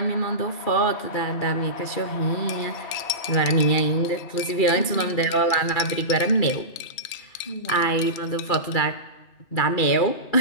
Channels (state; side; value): late; right; 2.4 ms